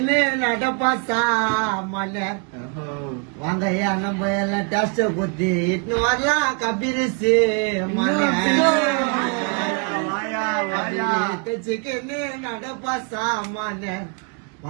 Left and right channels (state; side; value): quieter; left; 34.8 dB